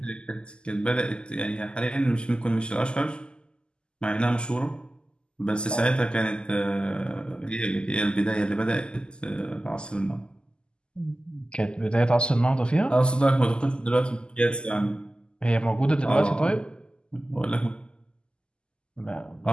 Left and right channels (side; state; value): right; late; 0.049 ms